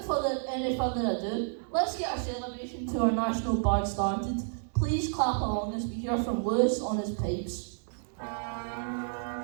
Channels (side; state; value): left; silent; digital silence